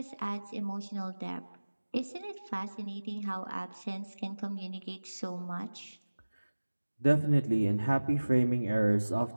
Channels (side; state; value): both; inverted; correlation -1.00